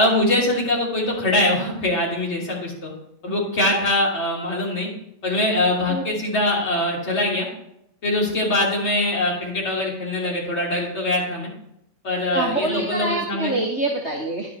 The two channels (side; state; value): right; late; 3.2 ms